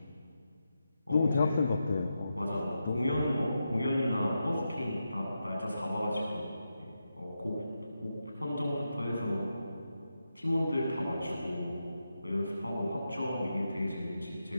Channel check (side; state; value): both; inverted; correlation -0.88